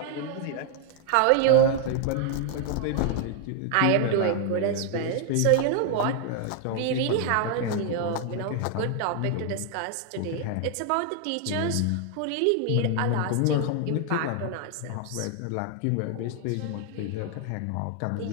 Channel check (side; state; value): both; different; correlation 0.00